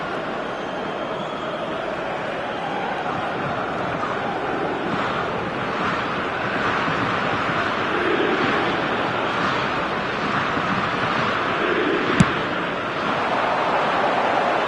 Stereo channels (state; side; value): identical; both; correlation 1.00